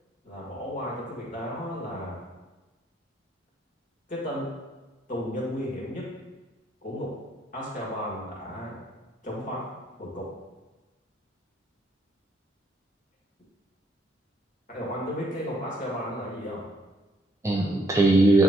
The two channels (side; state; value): both; normal; correlation 0.68